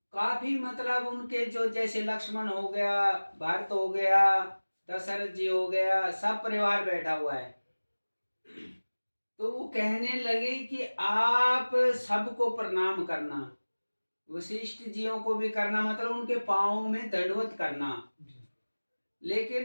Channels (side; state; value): both; inverted; correlation -1.00